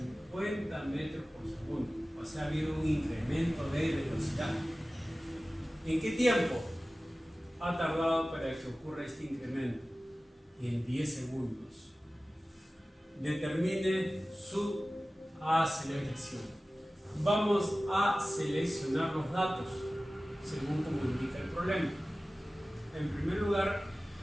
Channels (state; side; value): normal; both; correlation 0.97